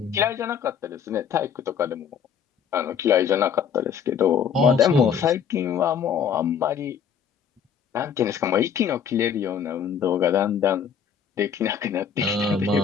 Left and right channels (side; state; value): right; quieter; 7.6 dB